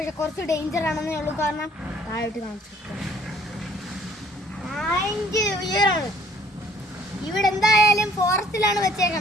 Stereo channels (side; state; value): both; normal; correlation 0.59